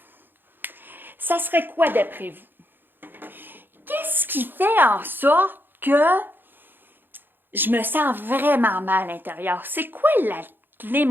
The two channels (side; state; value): left; late; 0.096 ms